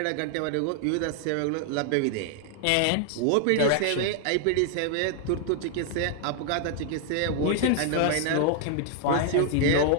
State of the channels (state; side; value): different; both; correlation 0.00